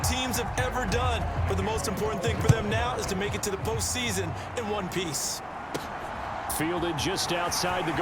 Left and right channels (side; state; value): both; identical; correlation 1.00